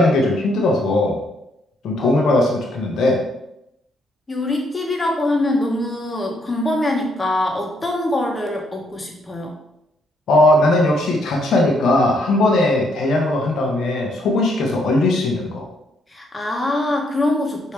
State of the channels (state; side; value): normal; both; correlation 0.72